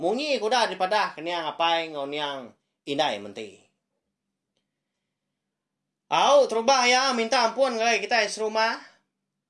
Munyi kuda daripada keniang apai ngoniang indai menti. Terubah ya, minta ampun kalau kita serumah.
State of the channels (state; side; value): identical; both; correlation 1.00